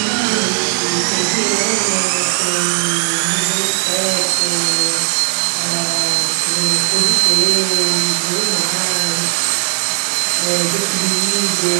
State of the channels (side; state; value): left; silent; digital silence